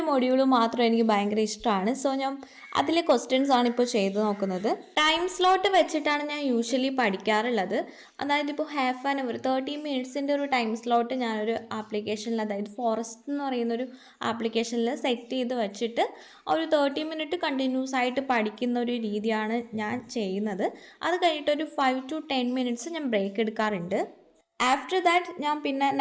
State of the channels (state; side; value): identical; both; correlation 1.00